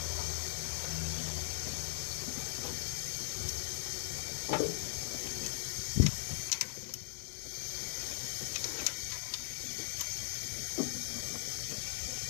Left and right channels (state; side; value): silent; right; 52 dB below the other